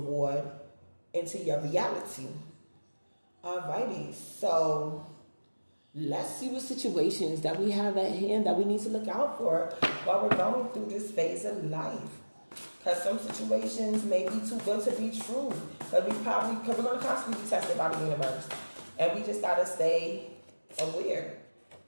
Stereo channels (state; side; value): inverted; both; correlation -1.00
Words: into your reality. Alrighty, so let's see what situations that we have at hand that we need to look out for while we're going through this phase of life. Because some situations may be too good to be true. Because we're going to constantly be tested by the universe. And we just got to stay aware